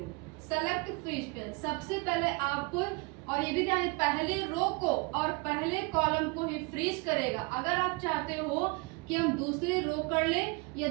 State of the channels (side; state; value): left; quieter; 29.0 dB